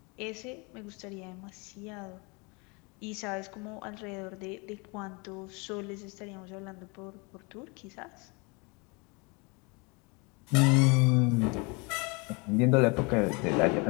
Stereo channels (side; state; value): right; quieter; 29.5 dB